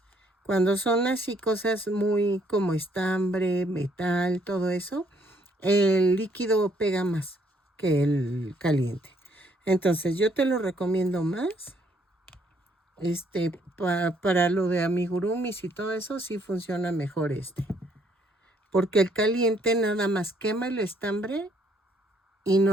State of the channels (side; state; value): both; normal; correlation 0.67